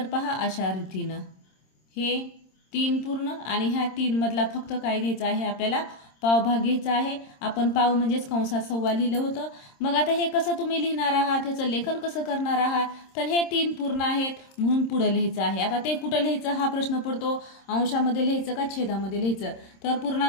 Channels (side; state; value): right; late; 26 ms